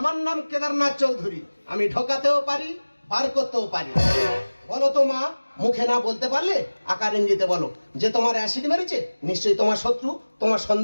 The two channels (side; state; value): both; inverted; correlation -1.00